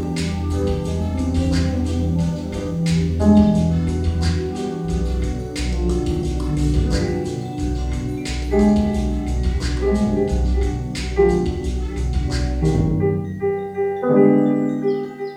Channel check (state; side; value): identical; both; correlation 1.00